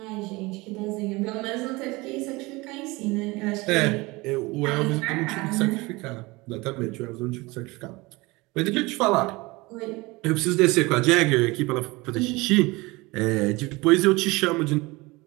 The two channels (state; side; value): quieter; left; 23.1 dB